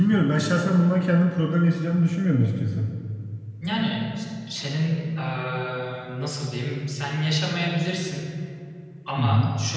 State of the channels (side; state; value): both; identical; correlation 1.00